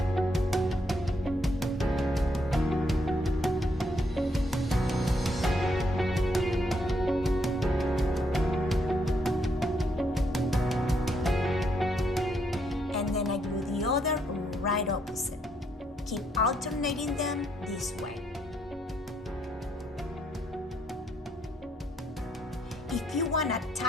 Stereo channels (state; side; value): normal; both; correlation 0.74